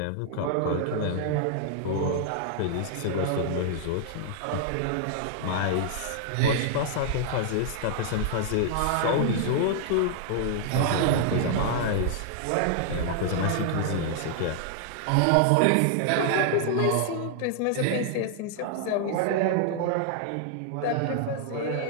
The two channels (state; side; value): different; both; correlation -0.01